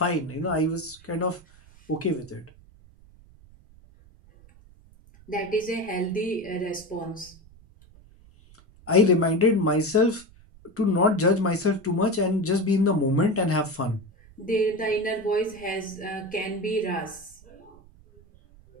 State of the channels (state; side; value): noise; right; rumble, 25 dB below the sound